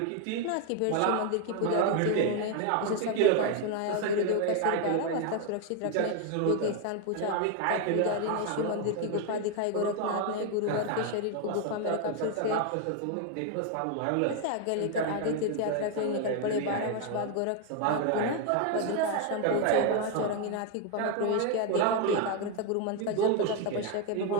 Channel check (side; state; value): both; different; correlation 0.01